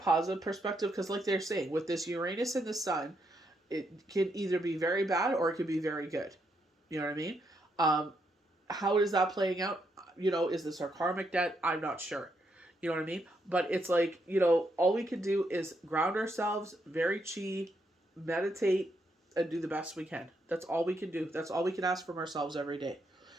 perspective because, like they're saying, with this Uranus and the Sun, it can either be very bad or it can be very good. You know what I mean? How is that playing out? Is this our karmic debt? I'm not sure. You know what I mean? But it's like, all we can do is ground ourselves, very chi, meditate, and do the best we can. That's all we can do. That's all we can ask from ourselves every day.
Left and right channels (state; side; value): normal; both; correlation 0.78